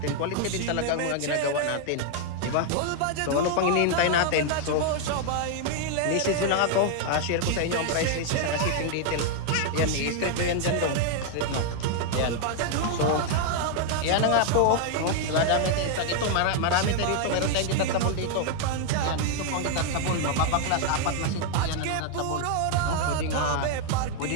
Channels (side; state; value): both; different; correlation 0.00